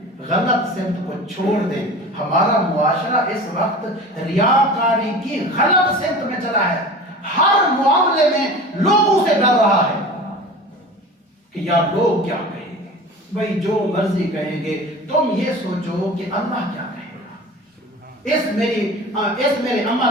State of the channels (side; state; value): both; normal; correlation 0.37